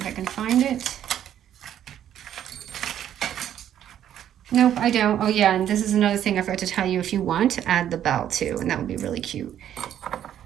I can find it. Nope, I don't. Oh yeah, and this is another thing I forgot to tell you. If you want, add the bell too, and that would be really cute.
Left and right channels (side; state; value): left; quieter; 10.6 dB